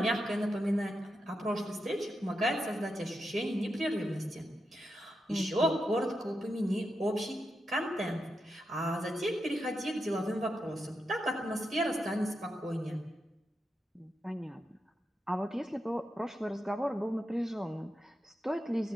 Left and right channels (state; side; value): normal; both; correlation 0.86